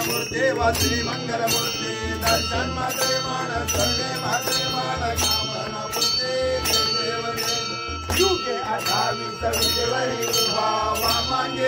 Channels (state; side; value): identical; both; correlation 1.00